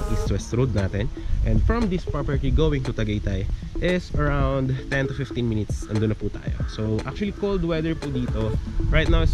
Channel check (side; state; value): both; identical; correlation 1.00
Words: East-West Road natin. And from this property going to Tagaytay is around 10 to 15 minutes, andun na po tayo. So actually cold weather po dito. Right now